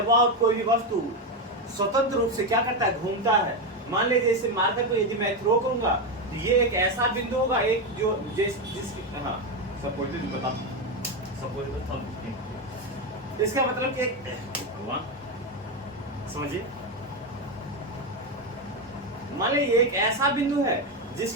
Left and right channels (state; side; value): normal; both; correlation 0.10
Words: कोई भी वस्तु स्वतंत्र रूप से क्या करता है, घूमता है। मान लीजिए इसे मारकर को यदि मैं थ्रो करूंगा तो ये एक ऐसा बिंदु होगा, एक जो जिसके हाँ सपोज बता इसका मतलब कि भगवान समझिए, मान लीजिए एक ऐसा बिंदु है